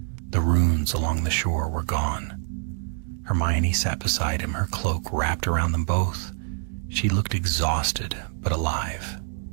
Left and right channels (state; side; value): silent; left; 59 dB below the other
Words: The runes along the shore were gone. Hermione sat beside him, her cloak wrapped around them both. She looked exhausted, but alive.